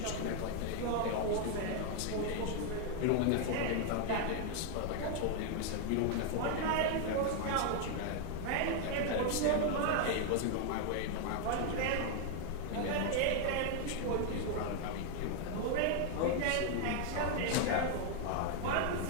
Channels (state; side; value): different; both; correlation 0.00